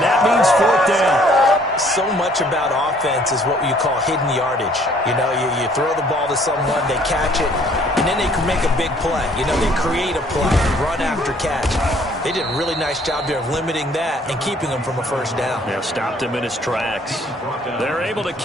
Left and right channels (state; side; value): normal; both; correlation 0.60